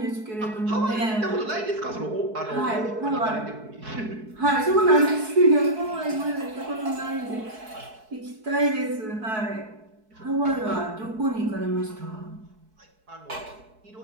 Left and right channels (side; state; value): left; late; 4.6 ms